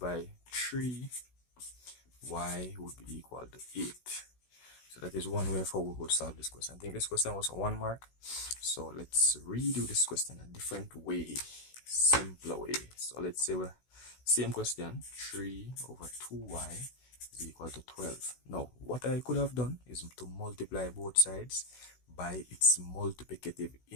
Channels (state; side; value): late; right; 16 ms